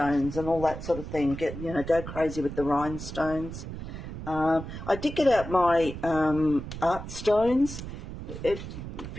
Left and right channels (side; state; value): right; noise; rumble, 9 dB below the sound